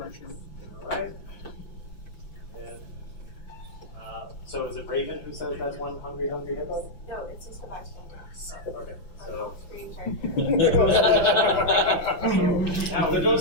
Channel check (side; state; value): right; late; 5.8 ms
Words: All right. And so is it Raven who says that's one hungry hippo? No, it's just a bystander. Okay. So Screen character. now There